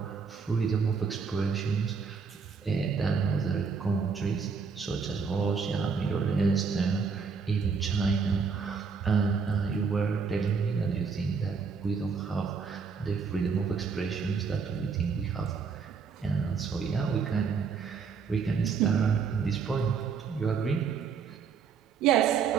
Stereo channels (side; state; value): left; quieter; 5.6 dB